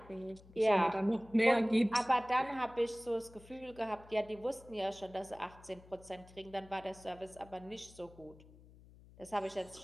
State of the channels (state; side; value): noise; left; hum, 22 dB below the sound